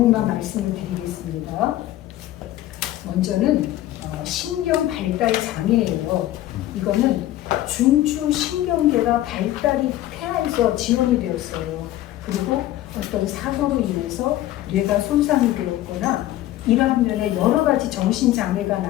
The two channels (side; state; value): right; quieter; 14.5 dB